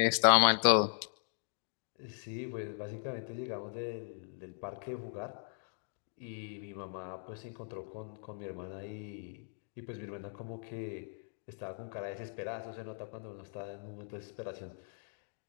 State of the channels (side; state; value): right; silent; digital silence